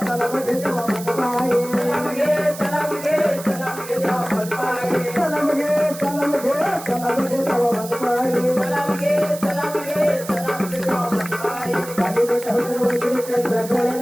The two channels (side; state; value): right; noise; hiss, 13 dB below the sound